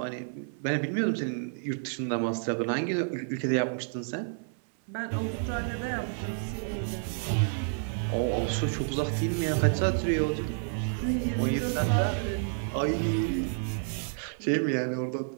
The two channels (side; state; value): left; silent; 58 dB below the other